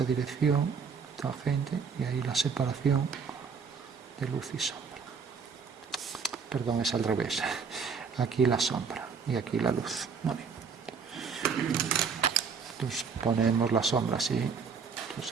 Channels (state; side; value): quieter; left; 5.7 dB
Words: dirección, tangente, y ahí la separación de luz y sombra. Perdón, es al revés. Aquí la sombra y aquí la luz. Vale. Entonces ponemos la sombra así.